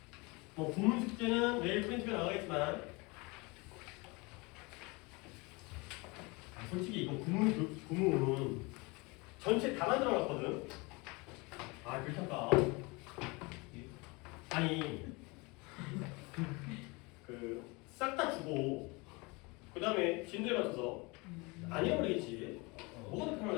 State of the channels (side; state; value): right; quieter; 26.6 dB